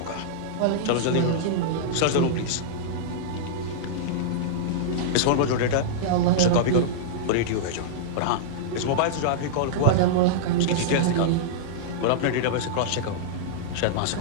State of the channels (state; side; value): different; both; correlation -0.02